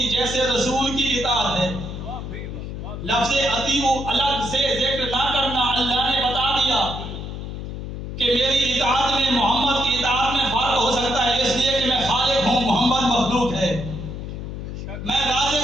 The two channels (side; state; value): left; noise; hum, 7 dB below the sound